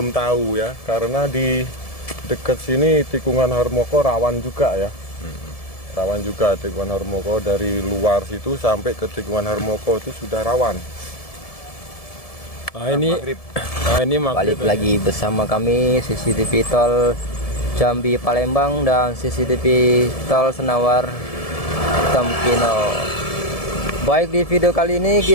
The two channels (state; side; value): late; right; 1.7 ms